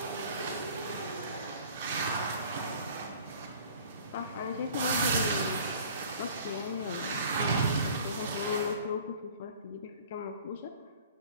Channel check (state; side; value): inverted; both; correlation -0.48